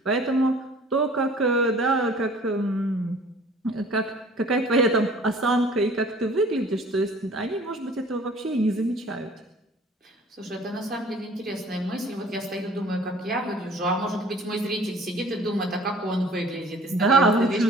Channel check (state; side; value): normal; both; correlation 0.50